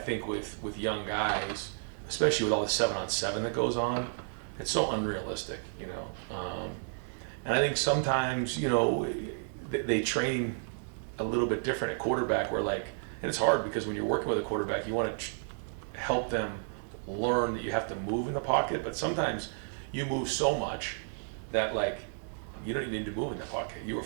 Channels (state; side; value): silent; left; digital silence